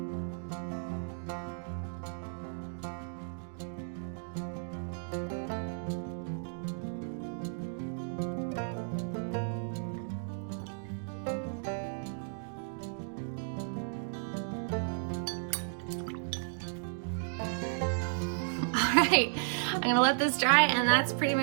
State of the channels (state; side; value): silent; left; digital silence